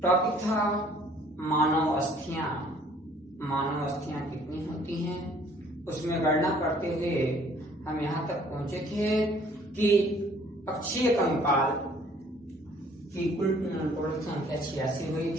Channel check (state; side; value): normal; both; correlation 0.58